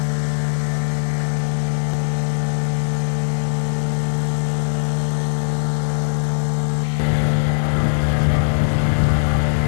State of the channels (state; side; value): silent; right; digital silence